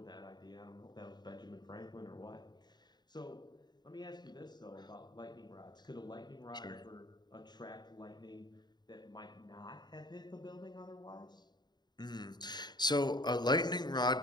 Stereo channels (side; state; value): right; late; 0.21 ms